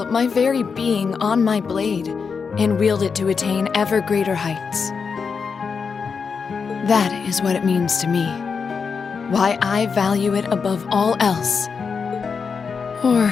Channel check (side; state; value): right; quieter; 5.6 dB